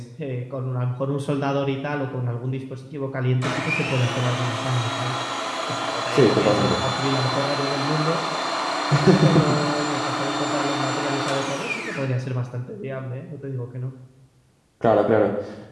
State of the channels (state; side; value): identical; both; correlation 1.00